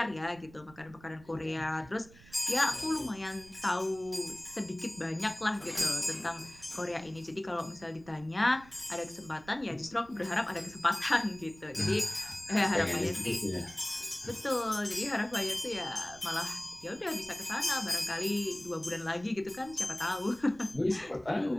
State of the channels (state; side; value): noise; right; rumble, 22 dB below the sound